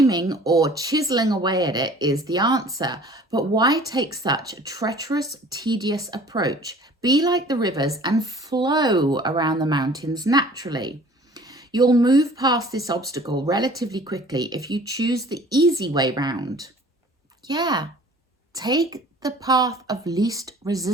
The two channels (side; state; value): both; normal; correlation 0.49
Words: or chiseling away at it is the answer, but why take such a treacherous, tedious approach? Be like the rivers and flow around the mountains naturally. You'll move past this obstacle relatively quickly if you choose the easy way round. Yeah, take the path of least